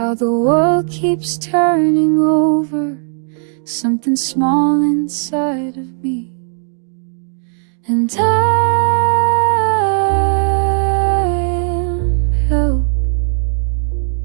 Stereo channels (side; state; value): left; silent; digital silence